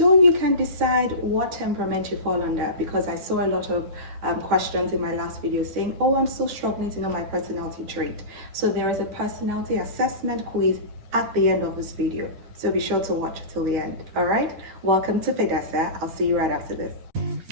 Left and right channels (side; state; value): left; late; 10 ms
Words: you can decide what temperament you fall under, because I saw a lot of questions in my last video saying, oh, I'm still struggling to know my personality trait. So there is a personality assessment quiz at the end of this video. So be sure to watch till the end. All right, welcome to Pedasa. I'll see you right after this.